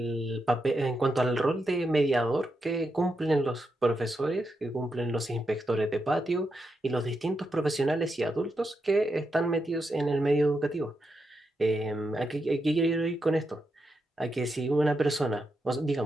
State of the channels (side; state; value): both; normal; correlation 0.85